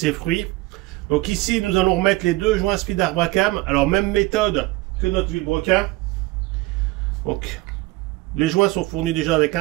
fruits. Donc ici, nous allons remettre les deux joints Speed Arbracam. Alors même méthode que notre vilebrequin. Donc les joints sont fournis déjà avec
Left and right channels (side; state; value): left; quieter; 20.2 dB